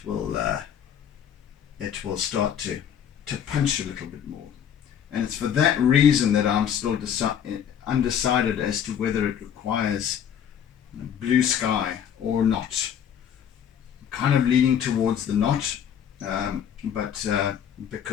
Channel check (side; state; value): right; quieter; 8.8 dB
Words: it will start to punch a little bit more. And it's for that reason that I'm still undecided as to whether it requires blue sky or not. I'm kind of leaning towards the not, but